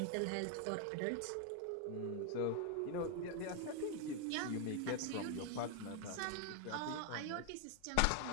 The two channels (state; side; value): different; both; correlation 0.01